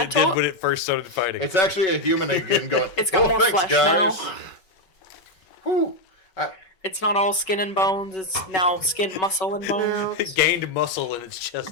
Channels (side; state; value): right; late; 5.3 ms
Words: did when it first started fighting. It's actually a human again going, It's got more thanks, flesh guys. now. Whew. It's not all skin and bones. It's now skin, muscle, and bones. Now, It gained muscle in its chest